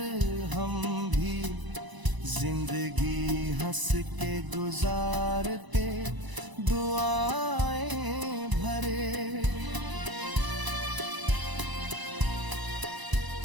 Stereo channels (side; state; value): left; late; 1.0 ms